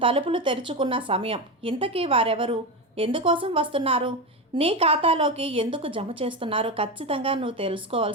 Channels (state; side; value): normal; both; correlation 0.17